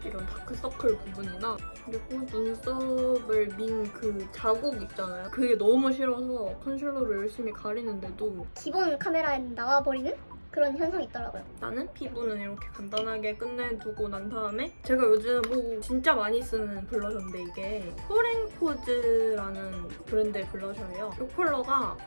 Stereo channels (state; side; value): inverted; both; correlation -1.00